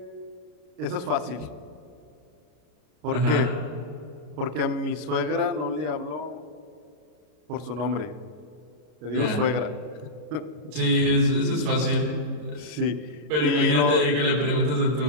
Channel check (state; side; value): late; left; 33 ms